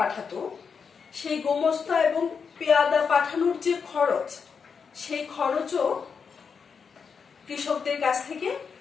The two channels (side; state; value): right; quieter; 6.0 dB